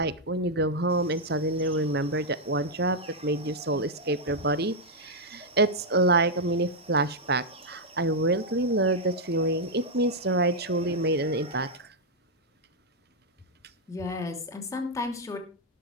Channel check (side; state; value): both; normal; correlation -0.02